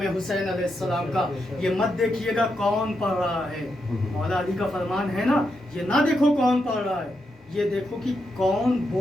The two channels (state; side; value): normal; both; correlation 0.83